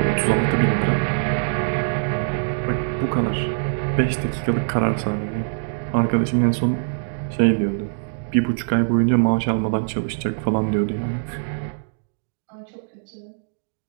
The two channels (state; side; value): silent; left; digital silence